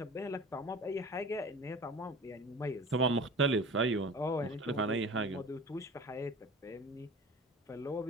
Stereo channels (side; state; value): both; normal; correlation 0.38